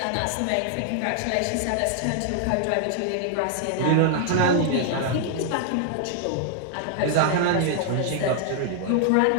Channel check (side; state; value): both; different; correlation -0.01